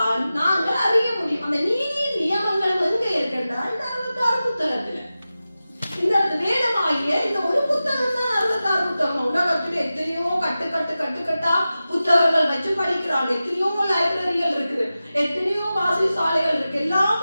நாங்கள் அறிய முடியும். அந்த நீதியின் நியமங்களும் எங்க இருக்கின்றா? இந்த 66 புத்தகத்துல. இந்த வேதமாகிய இந்த ஒரு புத்தகம் தான் 66 புத்தகம். உலகத்தில் எத்தனையோ கட்டுக்கட்டா புத்தகங்கள் வச்சு படிக்கிறாங்க. எத்தனையோ லைப்ரரிகள் இருக்குது, எத்தனையோ வாசிசாலைகள் இருக்கு, எல்லாம்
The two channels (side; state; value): both; inverted; correlation -0.94